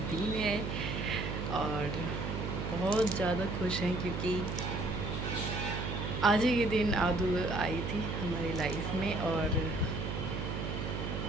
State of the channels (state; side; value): noise; right; hum, 3 dB below the sound